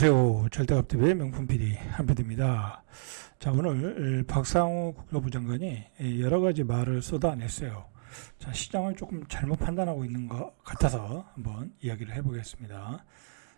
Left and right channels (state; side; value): silent; left; digital silence